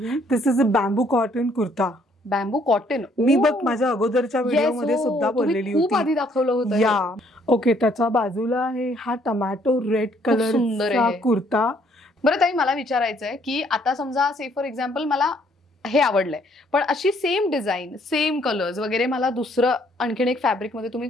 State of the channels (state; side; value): normal; both; correlation 0.65